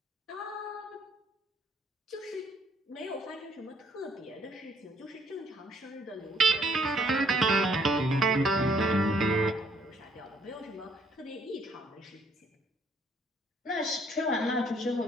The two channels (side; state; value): both; normal; correlation 0.65